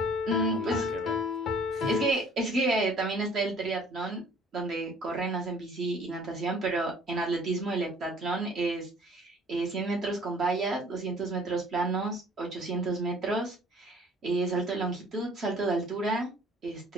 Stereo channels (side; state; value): both; normal; correlation 0.54